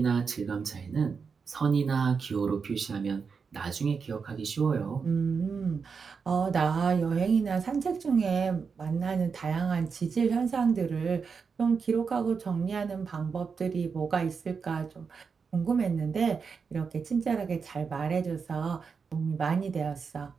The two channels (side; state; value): left; quieter; 5.6 dB